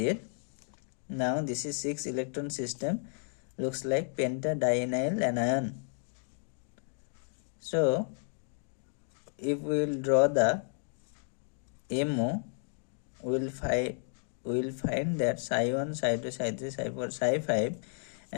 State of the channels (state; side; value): silent; right; 56 dB below the other